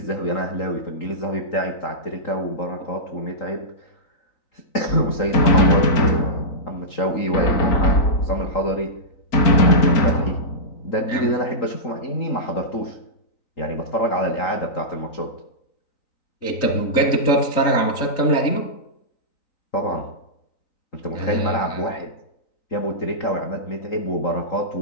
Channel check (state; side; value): late; right; 3.9 ms